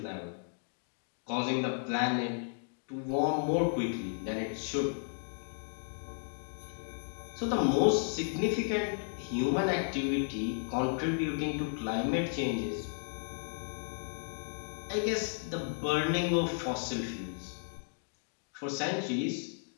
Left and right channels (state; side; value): silent; right; digital silence